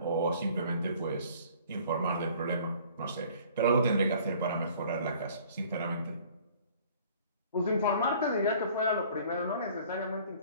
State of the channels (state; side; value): inverted; both; correlation -0.53